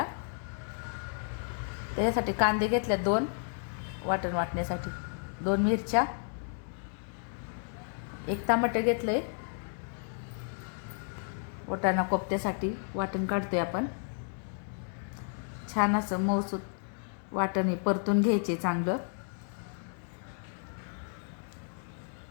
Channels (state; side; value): silent; right; 56 dB below the other